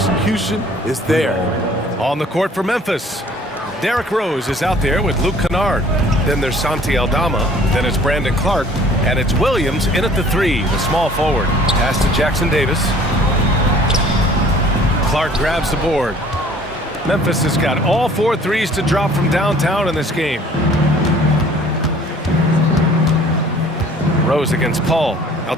is there. On the court for Memphis, Derrick Rose is out there with Luke Kennard. Then there's Santi Aldama. Then it's Brandon Clark. And it's Williams in at the 3, the small forward. Pass to Jackson Davis. Clark grabs the board. Memphis has got all 4 threes to drop from downtown in this game. Rose against Paul.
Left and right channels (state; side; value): normal; both; correlation 0.53